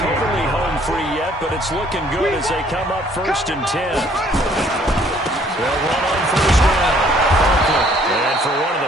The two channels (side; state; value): both; normal; correlation 0.61